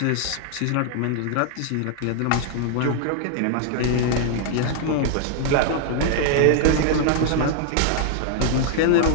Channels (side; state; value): both; different; correlation 0.00